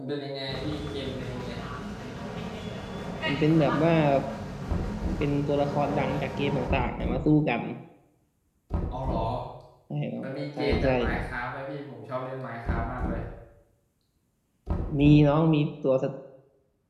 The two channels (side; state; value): both; identical; correlation 1.00